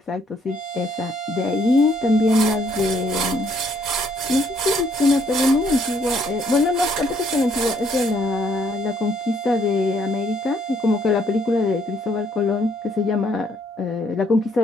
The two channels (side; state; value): both; normal; correlation 0.68